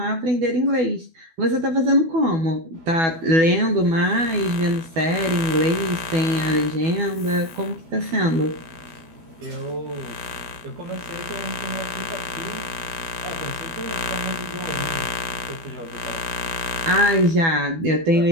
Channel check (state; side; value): late; left; 12 ms